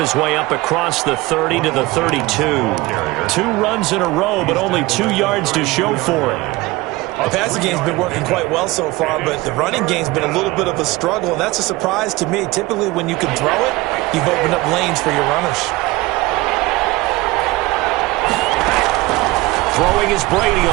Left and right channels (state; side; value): quieter; left; 20.7 dB